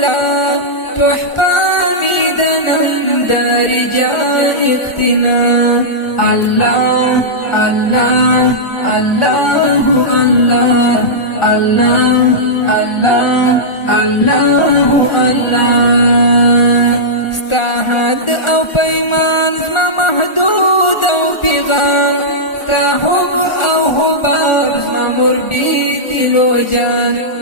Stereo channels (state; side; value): late; right; 1.4 ms